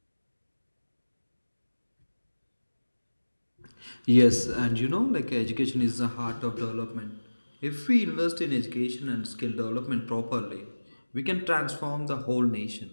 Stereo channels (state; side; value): inverted; both; correlation -1.00